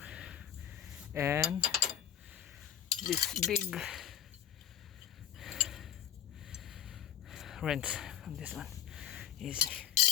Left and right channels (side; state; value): right; quieter; 9.9 dB